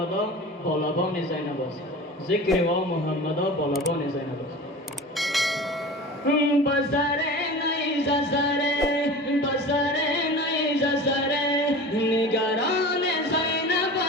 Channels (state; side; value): normal; both; correlation 0.35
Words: بالابان زینب است. ذکر و محمدا بالابان زینب است. بسره نیز سره بسره نیز سره نگران زینب